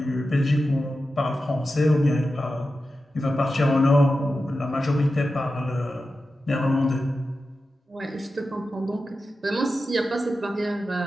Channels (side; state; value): both; normal; correlation 0.92